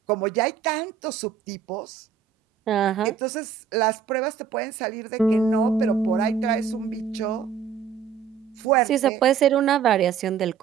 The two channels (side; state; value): left; quieter; 7.2 dB